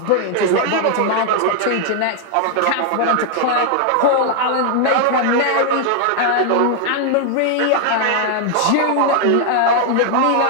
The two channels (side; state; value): both; different; correlation 0.00